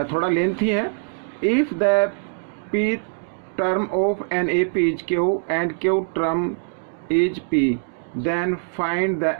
थोड़ा लेंथी है। If the P term of an A P is Q and Q term is P then find the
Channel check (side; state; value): left; silent; digital silence